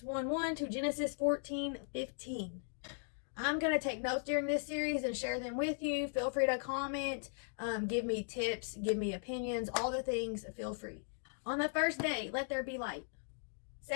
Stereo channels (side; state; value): right; silent; digital silence